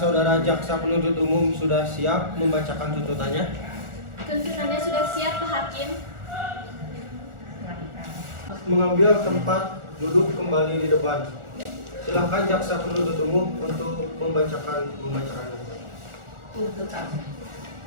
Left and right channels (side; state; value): left; late; 1.4 ms